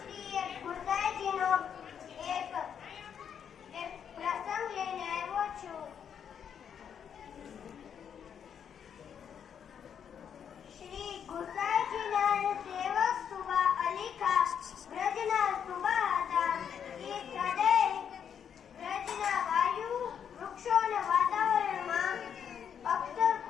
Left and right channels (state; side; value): quieter; right; 8.1 dB